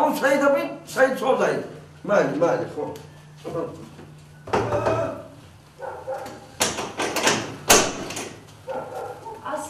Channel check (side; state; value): both; identical; correlation 1.00